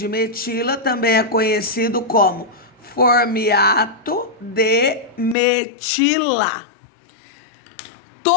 metila também é conhecido como formiato de metila.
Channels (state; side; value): drops out; right; at 5.4 s